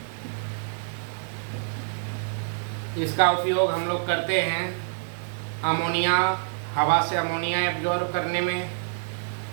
इसका उपयोग हम लोग करते हैं अमोनिया, हवा से अमोनिया एब्जॉर्ब करने में,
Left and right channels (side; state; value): left; silent; digital silence